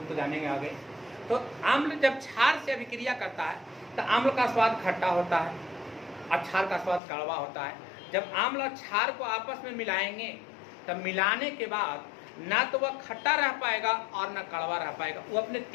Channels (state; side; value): drops out; right; at 7.0 s